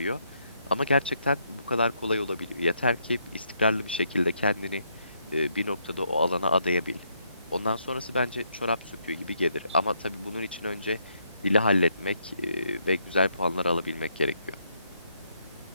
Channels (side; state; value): both; inverted; correlation -0.75